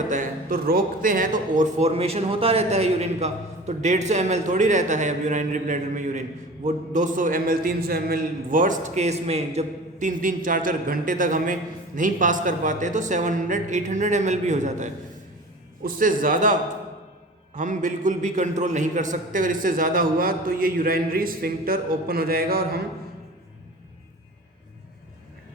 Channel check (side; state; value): both; normal; correlation 0.38